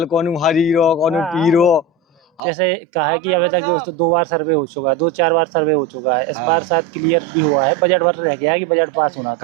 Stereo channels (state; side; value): drops out; left; at 2.4 s